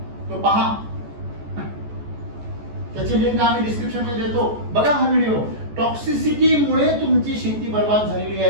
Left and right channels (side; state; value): left; late; 14 ms